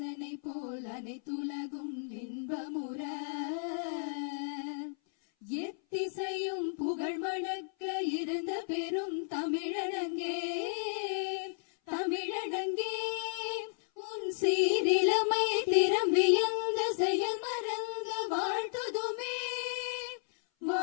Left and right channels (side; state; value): right; silent; 55 dB below the other